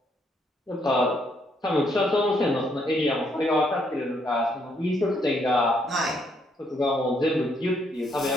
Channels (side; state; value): both; normal; correlation 0.72